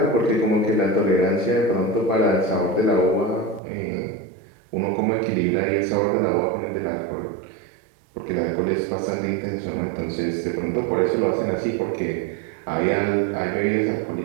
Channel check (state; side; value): drops out; left; at 3.6 s